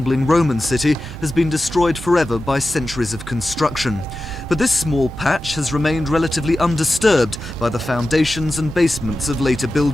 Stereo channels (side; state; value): both; normal; correlation 0.93